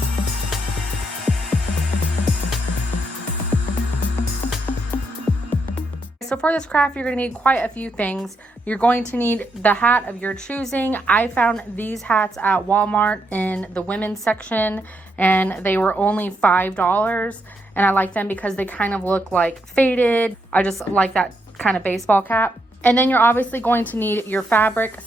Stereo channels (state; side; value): normal; both; correlation 0.79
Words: So for this craft, you're going to need quite a few things. You're going to need the hat of your choosing. I found these hats at Walmart in the women's section, and they were only $5. And I like them because they kind of look like faded. I just like that kind of baseball cap. And then you're obviously going to need your fabric.